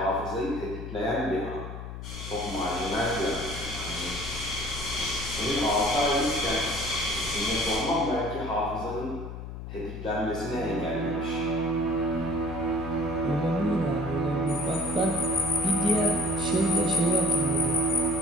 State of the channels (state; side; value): noise; left; hum, 9 dB below the sound